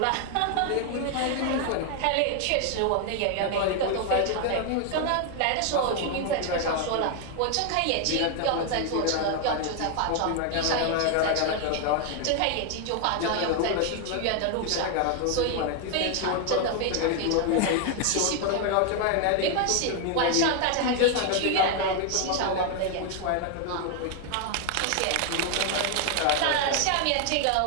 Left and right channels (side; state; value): both; different; correlation 0.00